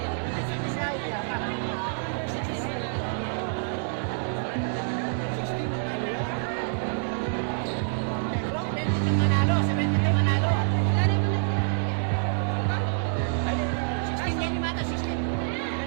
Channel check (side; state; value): left; silent; 60 dB below the other